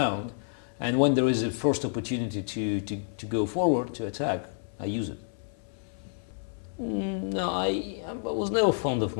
And when there is a first opportunity to go forward, to attack, I use it. No, I was never fond of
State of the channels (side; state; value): right; silent; 58 dB below the other